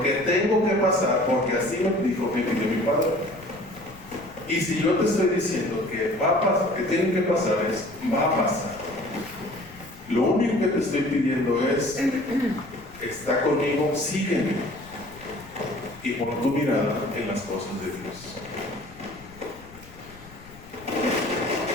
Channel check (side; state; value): left; noise; rumble, 20 dB below the sound